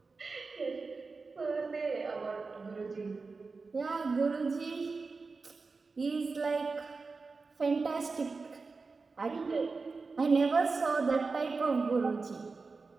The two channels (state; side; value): quieter; left; 4.2 dB